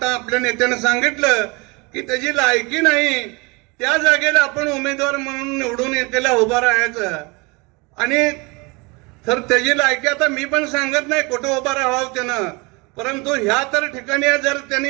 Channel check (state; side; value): quieter; left; 27.4 dB